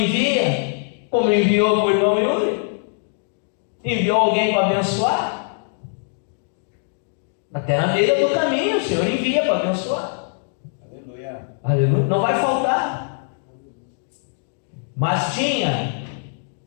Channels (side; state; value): right; silent; digital silence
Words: como enviou para o irmão Yuri, enviou alguém para abençoar. Até na beira do caminho o Senhor envia para abençoar. Aleluia. Aleluia. Não vai faltar. Mas tinha,